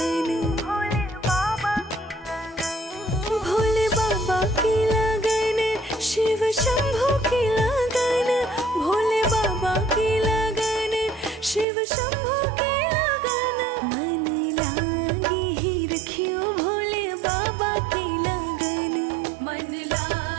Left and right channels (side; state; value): left; drops out; at 11.7 s